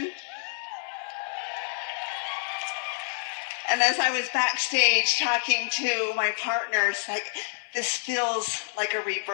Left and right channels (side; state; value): right; silent; 59 dB below the other